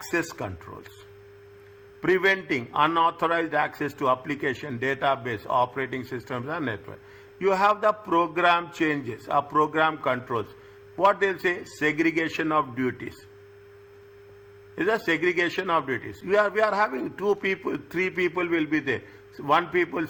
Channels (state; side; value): identical; both; correlation 1.00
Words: controls, preventing unauthorized access to application, database, operating systems, and network. You have the program changes, program controls. What they'll say? Segregation of duties. Is a segregation of duties. We are having 2 people, 3 people will be there. 1 people,